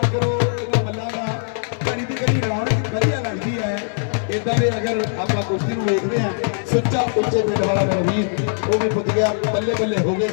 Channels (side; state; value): right; silent; 65 dB below the other